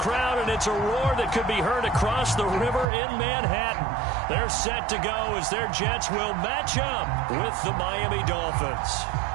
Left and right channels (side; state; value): left; drops out; at 2.9 s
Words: and it's a roar that could be heard across the river in Manhattan. They're set to go as their Jets will match up with the Miami Dolphins.